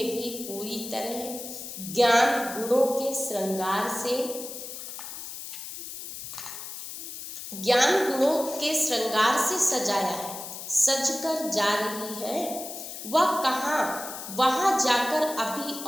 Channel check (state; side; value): noise; left; hiss, 9 dB below the sound